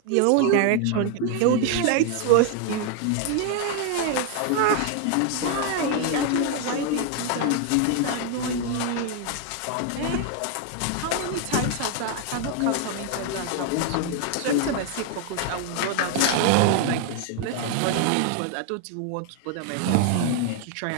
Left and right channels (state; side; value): different; both; correlation 0.00